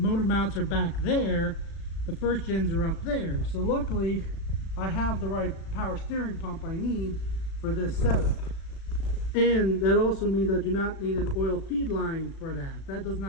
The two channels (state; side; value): late; right; 36 ms